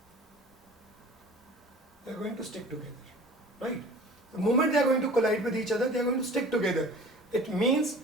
They are going to stick together, right? The moment they are going to collide with each other, they are going to stick together. It means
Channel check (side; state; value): both; normal; correlation 0.44